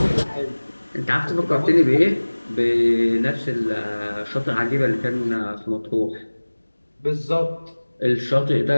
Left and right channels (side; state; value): both; inverted; correlation -1.00